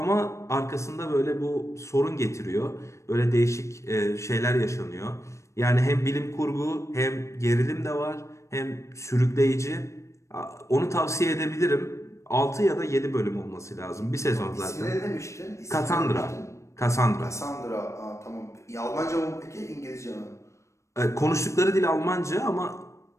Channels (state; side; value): late; right; 0.14 ms